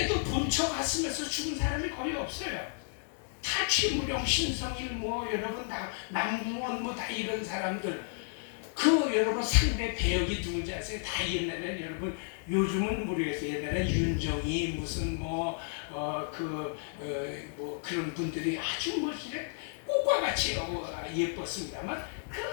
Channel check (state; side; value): silent; right; 56 dB below the other